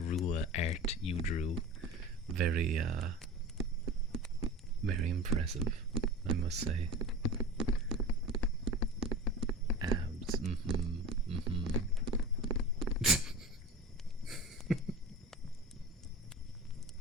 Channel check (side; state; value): both; normal; correlation 0.32